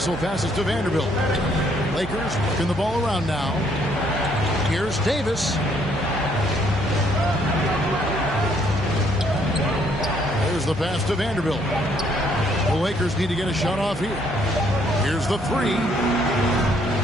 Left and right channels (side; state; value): both; normal; correlation 0.67